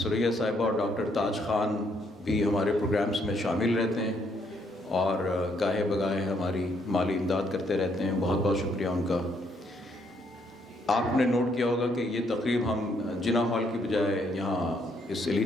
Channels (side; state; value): both; normal; correlation 0.71